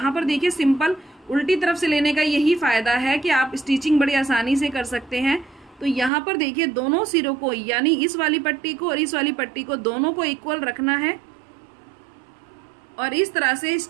पर देखिए सिंपल उल्टी तरफ से लेने का यही फायदा है कि आप स्टिचिंग बड़ी आसानी से कर सकते हैं। तो यहाँ पर देखिए दोनों सिरों को, यानी इस वाली पट्टी को और इस वाली पट्टी को, दोनों को इक्वल रखना है और इस तरह से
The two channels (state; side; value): drops out; left; at 6.1 s